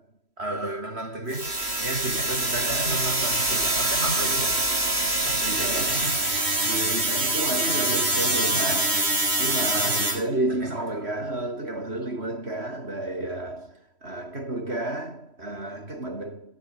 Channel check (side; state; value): left; late; 3.1 ms